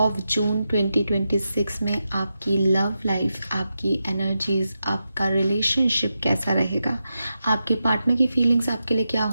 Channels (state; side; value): inverted; both; correlation -0.88